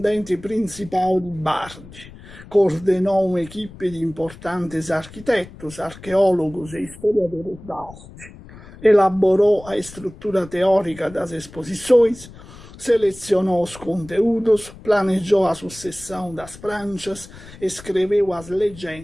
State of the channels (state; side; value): noise; left; rumble, 18 dB below the sound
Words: principal de Bardi, coordenou uma equipe de importantes arquitetos, arqueólogos e historiadores da arte, elaborou a estrutura teórica das exposições, selecionou os conteúdos, planejou a sucessão das pranchas, escreveu as